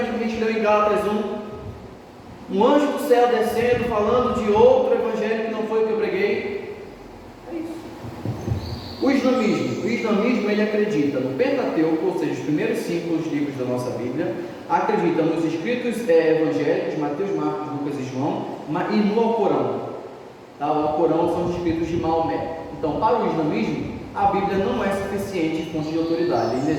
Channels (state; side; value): identical; both; correlation 1.00